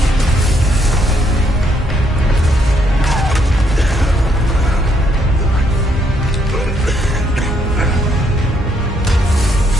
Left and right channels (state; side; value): normal; both; correlation 0.73